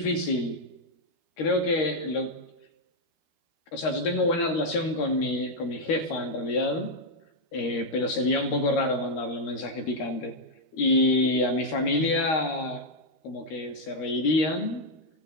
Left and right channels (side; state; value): right; late; 13 ms